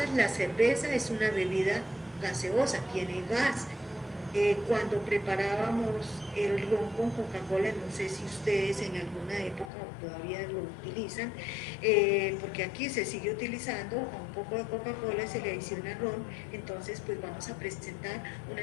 la cerveza es una bebida gaseosa, tiene gas. Cuando preparábamos el ron con Coca-Cola, no sé si ustedes en alguna época todavía lo utilizan, porque aquí se sigue utilizando a un poco de Coca-Cola, se le adiciona ron, entonces pues vamos a presentar una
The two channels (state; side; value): drops out; right; at 9.7 s